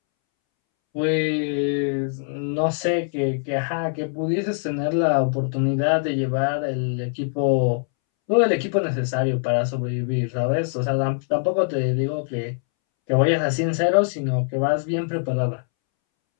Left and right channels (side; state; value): right; silent; 63 dB below the other